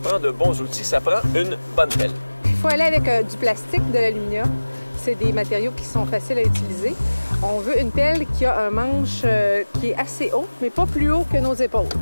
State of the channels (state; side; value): inverted; both; correlation -1.00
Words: de bons outils, ça prend une bonne pelle. Il faut aller avec du plastique, de l'aluminium. C'est des matériaux qui sont faciles à utiliser. On veut une pelle qui a un manche qui est assez haut, mais pas plus haut que nos épaules.